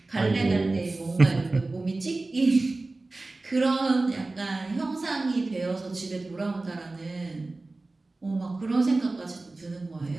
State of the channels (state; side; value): quieter; left; 3.2 dB